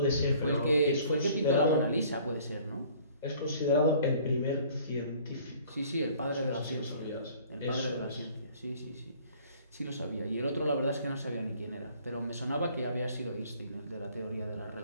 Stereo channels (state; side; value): inverted; both; correlation -0.54